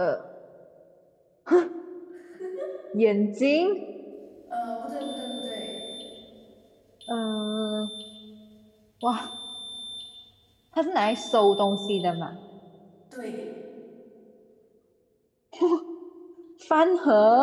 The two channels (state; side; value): identical; both; correlation 1.00